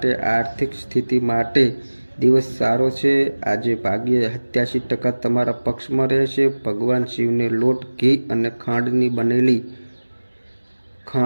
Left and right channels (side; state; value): both; inverted; correlation -1.00